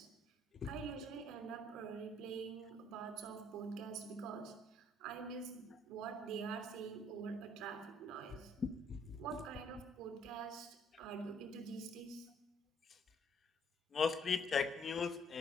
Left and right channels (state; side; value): normal; both; correlation 0.64